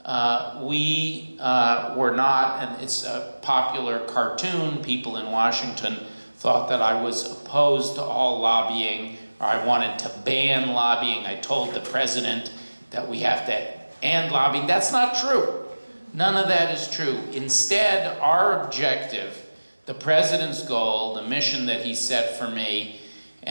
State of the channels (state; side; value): inverted; both; correlation -1.00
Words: we were not, and it's a popular cartoon, people in Washington thought that I was opposed to all lobbying, or I wanted to ban lobbying. I told the president that we have to end lobbying. That's not true. None of that is true. Instead, our objective, the president's goal, the mission that he set for me,